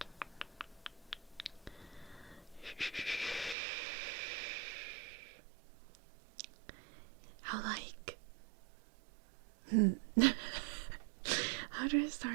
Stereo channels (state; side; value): drops out; left; at 3.6 s